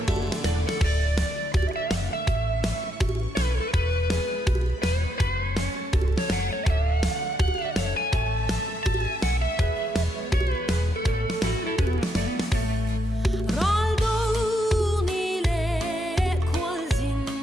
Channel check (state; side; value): normal; both; correlation 0.79